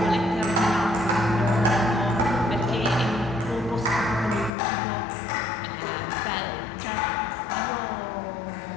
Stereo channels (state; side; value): drops out; right; at 4.5 s